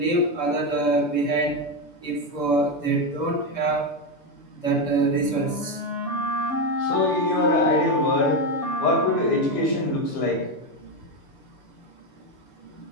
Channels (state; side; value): late; right; 6.9 ms